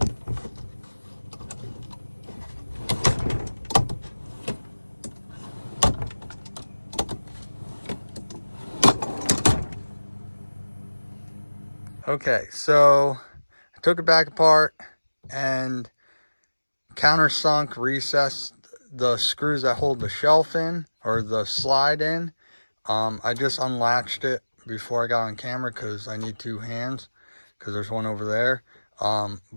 Okay, so I took it back apart and countersunk, recessed the screws that hold the shelf in, or the slide in. I just unlatched it before I got on camera because I need 2 hands, because there's one over there.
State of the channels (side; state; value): both; inverted; correlation -1.00